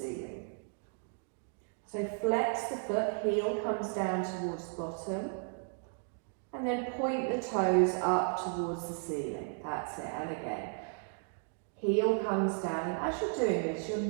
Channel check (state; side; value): silent; left; 55 dB below the other